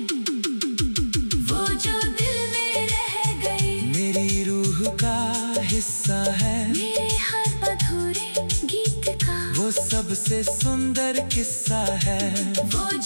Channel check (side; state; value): both; inverted; correlation -1.00